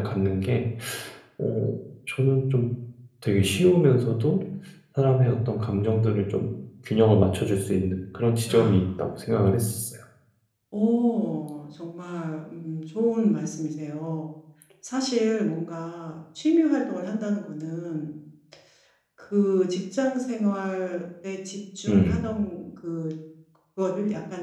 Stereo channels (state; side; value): identical; both; correlation 1.00